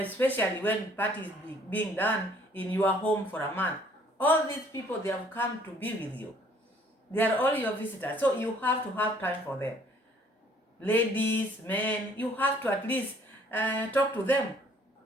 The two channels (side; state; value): both; normal; correlation 0.59